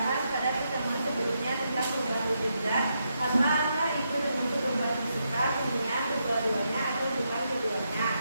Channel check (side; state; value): both; inverted; correlation -0.82